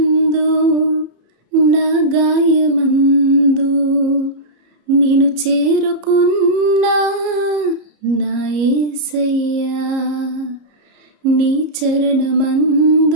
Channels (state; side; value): late; left; 33 ms